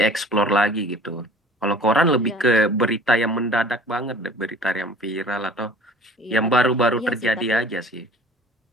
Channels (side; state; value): both; normal; correlation 0.48